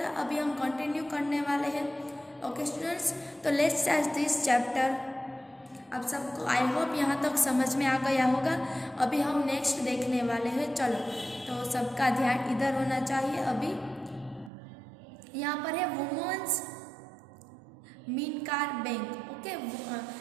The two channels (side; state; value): left; drops out; at 14.5 s